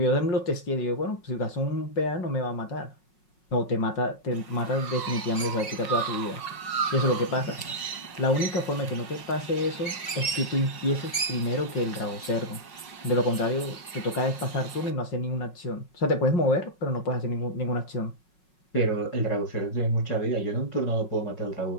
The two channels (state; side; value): late; right; 5.5 ms